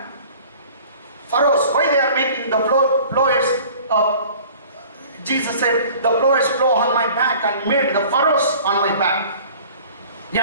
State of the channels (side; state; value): both; inverted; correlation -0.47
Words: Pharaohs, why they are making the flowers? Jesus said, the flowers flow on my back and made the furrows on my back.